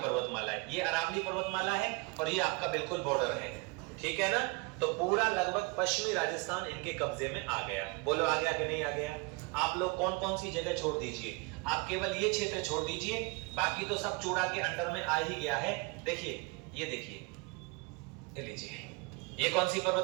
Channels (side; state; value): left; quieter; 27.7 dB